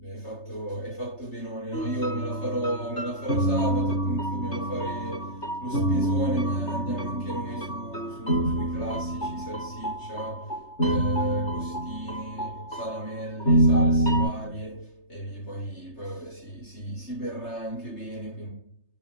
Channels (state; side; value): late; right; 3.3 ms